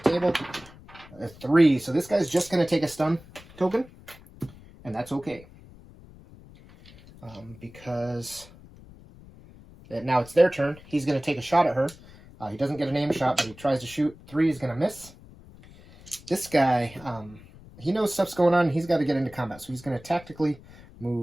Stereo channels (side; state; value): left; noise; rumble, 21 dB below the sound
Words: the table. A 3. So this guy's just going to take a stun token. And that's okay. Because now it's their turn. He's going to take a shot at her. He doesn't get an aim shot, but he tries to shoot. 3 is going to miss. This guy, he knows stuff's going on. He's got to get into combat. So he's going to tactically